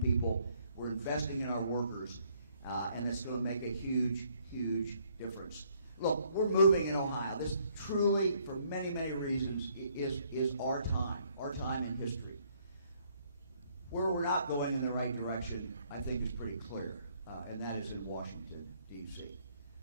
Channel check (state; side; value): inverted; both; correlation -0.67